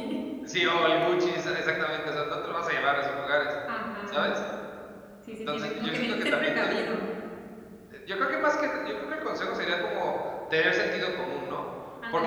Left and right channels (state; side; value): identical; both; correlation 1.00